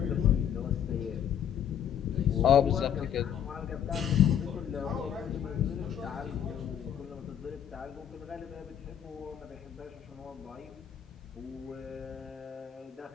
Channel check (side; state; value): right; quieter; 9.3 dB